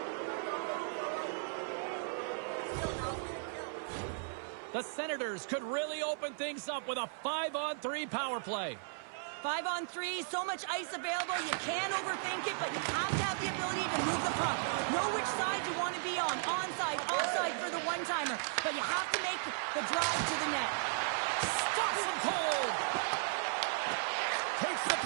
The Senators could really open things up with a 5-on-3 power play. 5-on-3, so much ice available. You can't overthink it, but you have to have the ability to move the puck. Know which side you want to be on. Onside, offside for the one-timer. But you have to make the drive to the net. Stops him cold. Takes the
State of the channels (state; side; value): silent; left; 54 dB below the other